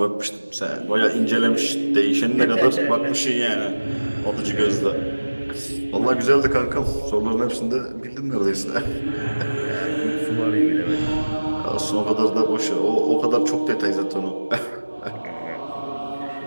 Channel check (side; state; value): both; inverted; correlation -1.00